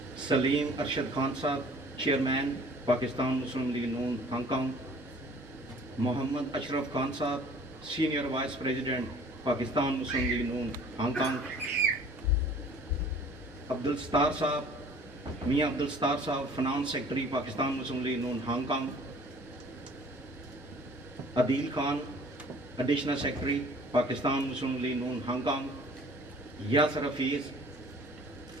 Saleem Arshad Khan sahab, chairman Pakistan Muslim League Noon Hong Kong, Muhammad Ashraf Khan sahab, senior vice president Pakistan Muslim League Noon Hong Kong, Abdul Sattar sahab, Mian Abdul Sattar sahab, finance secretary Pakistan Muslim League Noon Hong Kong, Adeel Khan, additional secretary Pakistan Muslim League Noon Hong Kong, Yasir Hafeez,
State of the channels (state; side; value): normal; both; correlation 0.51